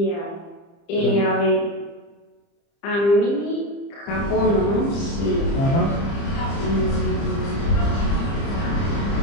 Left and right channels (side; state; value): right; late; 30 ms